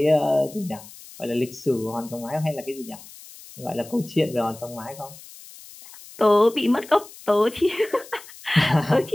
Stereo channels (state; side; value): noise; left; hiss, 19 dB below the sound